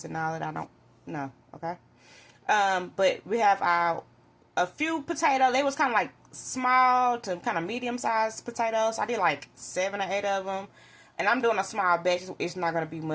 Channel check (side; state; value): both; identical; correlation 1.00